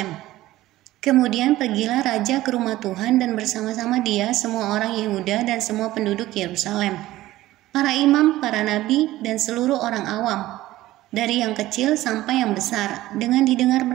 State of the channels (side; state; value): left; quieter; 16.1 dB